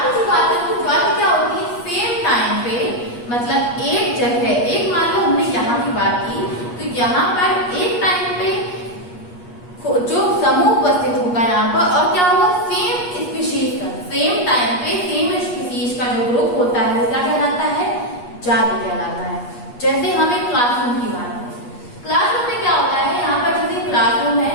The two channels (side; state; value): right; late; 8.4 ms